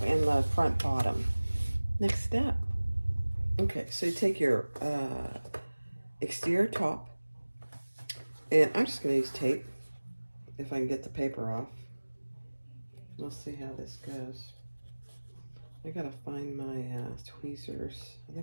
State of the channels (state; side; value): inverted; both; correlation -1.00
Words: and the front bottom. Next step. Okay, so you take your exterior top, and I'm just going to use tape if I can get the paper off. We'll see how this goes. I got to find my tweezers. I